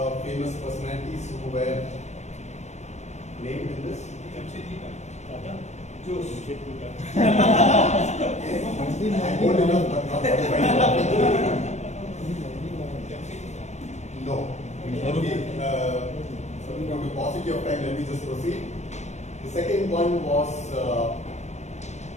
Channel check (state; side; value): late; right; 0.33 ms